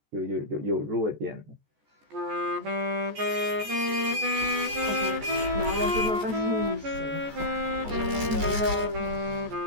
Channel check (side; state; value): left; late; 14 ms